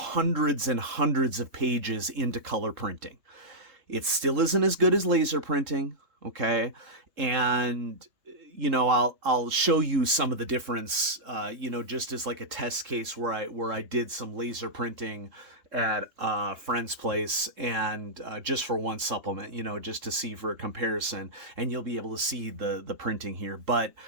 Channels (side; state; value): left; late; 3.2 ms